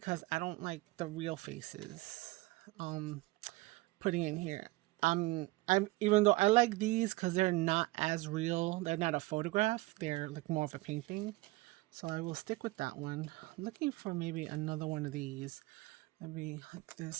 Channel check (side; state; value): left; quieter; 20.5 dB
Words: I don't like the real faces putting in here. I'm even though I like these because they're not as real, they're not a photograph, they're like more of a painting. So I will stick with that one. I'm looking for maybe another one of these. Maybe like